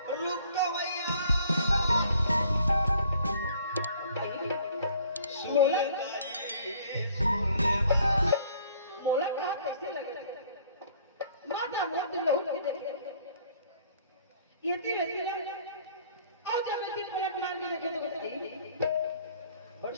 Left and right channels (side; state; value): both; inverted; correlation -0.58